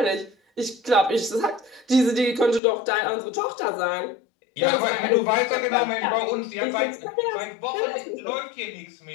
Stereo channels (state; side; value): drops out; right; at 2.6 s